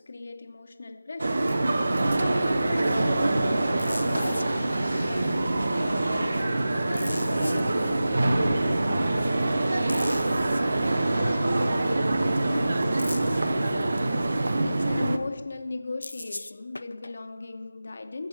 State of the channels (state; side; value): inverted; both; correlation -0.96